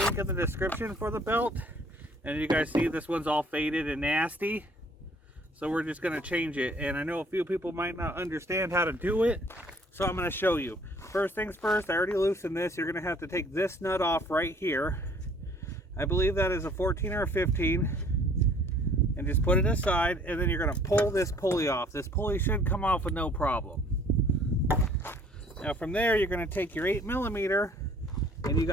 in the description for the belt. And you guys see this one's all faded and nasty. So we're just going to change it. And I know a few people might not understand how to do it. So I'm going to show you. First things first, I already loosened this. You're going to have to take this nut off right here. I believe that is a 14 or a 15. And just put it aside. And then you're going to pull this pulley off. This pulley should come off with no problem. Now from there, you're going to take your 8mm. And you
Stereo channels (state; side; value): normal; both; correlation 0.57